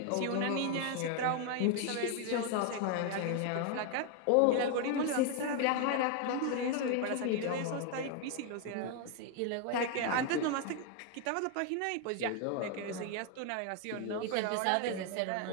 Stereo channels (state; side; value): different; both; correlation 0.01